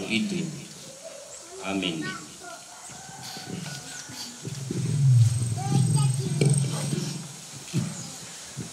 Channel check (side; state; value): both; identical; correlation 1.00